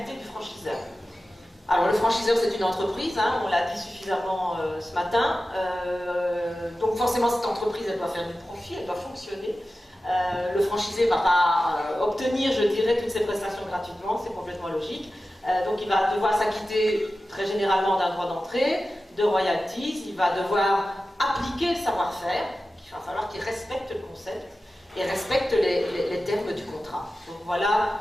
du franchiseur. Alors le franchiseur c'est une entreprise, hein, on l'a dit suffisamment ce matin, donc forcément cette entreprise elle doit faire du profit, elle doit fonctionner. Le franchisé ne va pas obtenir, je dirais, toutes ses prestations gratuitement, c'est complètement logique. Donc il va devoir s'acquitter très généralement d'un droit d'entrée, de royalties, il va devoir appliquer le savoir-faire, il va falloir qu'il respecte le concept et respecte les termes du contrat. Donc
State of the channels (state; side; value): normal; both; correlation 0.94